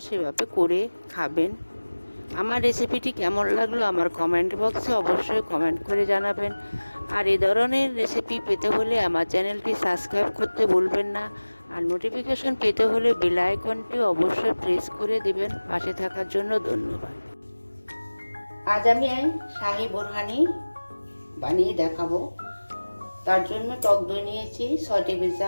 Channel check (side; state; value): both; inverted; correlation -1.00